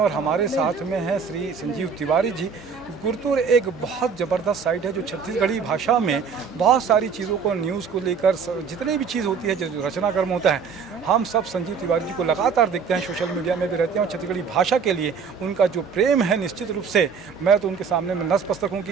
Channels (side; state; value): left; quieter; 6.0 dB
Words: हमारे साथ में हैं श्री संजीव तिवारी जी। गुरतुर एक बहुत ज़बरदस्त साइट है जो छत्तीसगढ़ी भाषा में बहुत सारी चीज़ों को, न्यूज़ को लेकर जितनी भी चीज़ होती है, जो रचनाक्रम होता है, हम सब संजीव तिवारी जी को लगातार देखते हैं, सोशल मीडिया में भी रहते हैं और छत्तीसगढ़ी भाषा के लिए उनका जो प्रेम है, निश्चित रूप से मैं तो उनके सामने में नतमस्तक हूँ कि